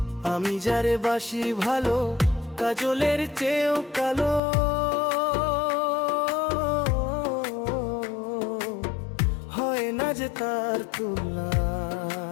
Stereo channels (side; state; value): right; drops out; at 4.4 s